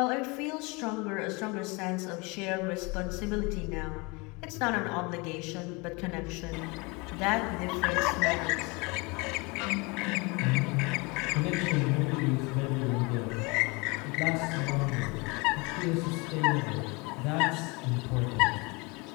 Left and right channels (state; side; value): quieter; right; 27.7 dB